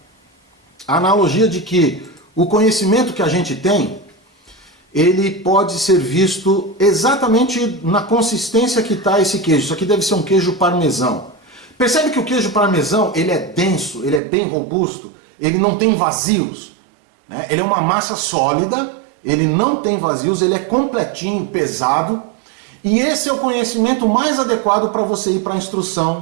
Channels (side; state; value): left; drops out; at 14.2 s